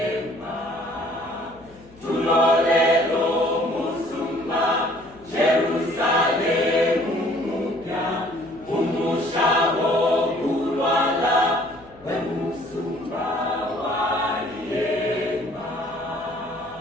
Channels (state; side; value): noise; left; hum, 25 dB below the sound